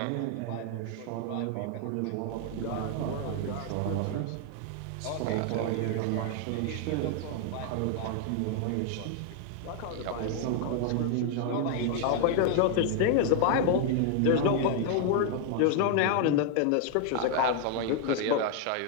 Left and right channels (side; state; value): both; different; correlation 0.00